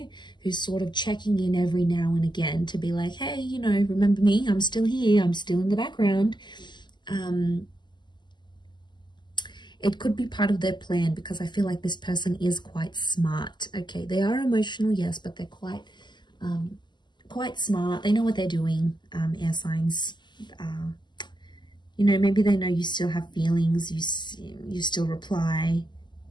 who's sort of checking in every now and again to be like, hey, you know, remember me? I'm still here. I'm still in the background. It could be part of their plan, because I feel like this person is quite smart. Okay, they are emotional, yes, but they're quite smart. They know what they're doing, air signs. You know, maybe they know you still have feelings. You still reply.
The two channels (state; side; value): late; right; 0.21 ms